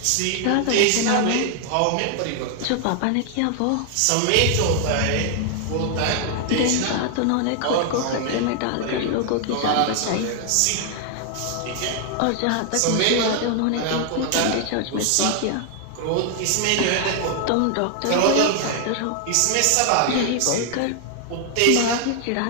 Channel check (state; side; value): different; both; correlation 0.00